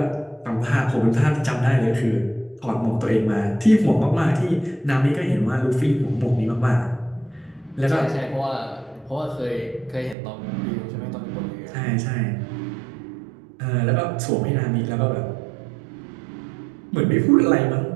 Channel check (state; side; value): drops out; left; at 10.2 s